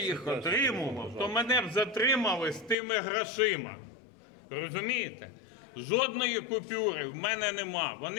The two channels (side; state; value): right; drops out; at 2.8 s